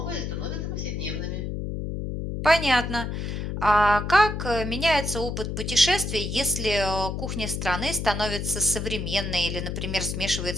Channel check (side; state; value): left; noise; hum, 4 dB below the sound